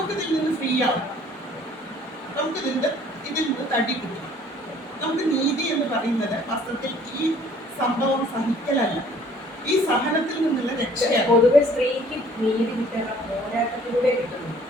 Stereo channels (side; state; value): both; normal; correlation 0.56